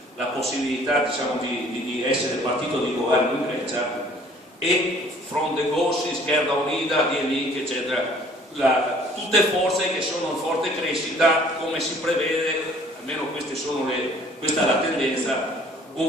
la possibilità diciamo, di essere partito di governo in Grecia, e Front de Gauche, Izquierda Unida, Link, eccetera, tutte forze che sono in forte crescita, come si prevede, almeno questa è la tendenza,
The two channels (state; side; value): normal; both; correlation 0.55